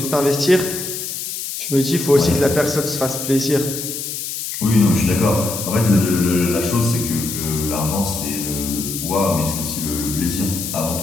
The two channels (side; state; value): left; noise; hiss, 6 dB below the sound